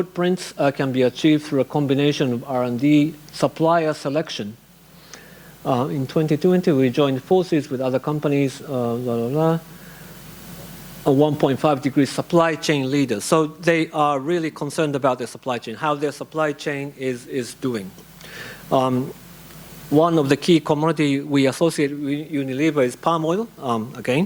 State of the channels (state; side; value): identical; both; correlation 1.00